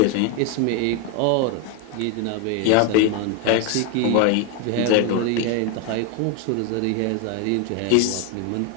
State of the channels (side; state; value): both; different; correlation 0.01